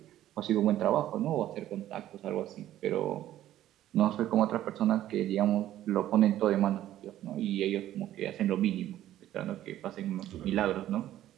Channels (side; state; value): left; quieter; 13.0 dB